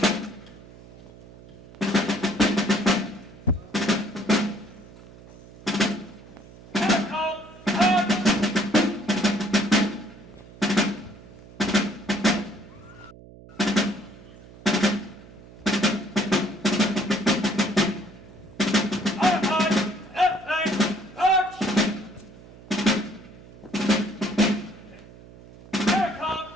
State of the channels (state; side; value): noise; right; hum, 20 dB below the sound